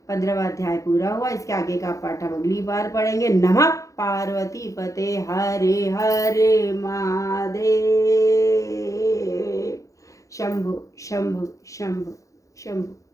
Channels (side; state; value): right; late; 0.16 ms